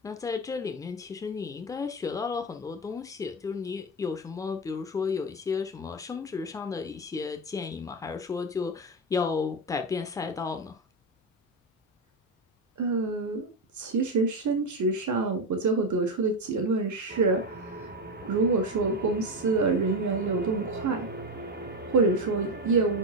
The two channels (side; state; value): both; normal; correlation 0.13